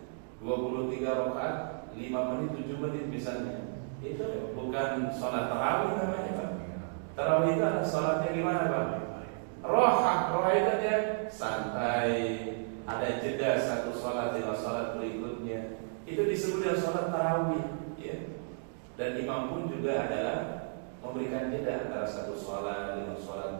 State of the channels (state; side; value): silent; left; digital silence